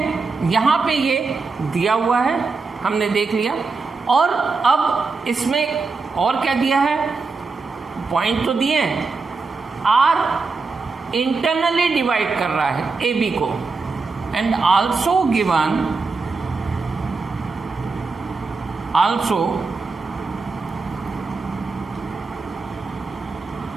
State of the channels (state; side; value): quieter; left; 4.3 dB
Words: यहां पे ये दिया हुआ है, हमने देख लिया। और अब इसमें और क्या दिया है? पॉइंट तो दिए हैं, R इंटरनली डिवाइड कर रहा है ए बी को, and also given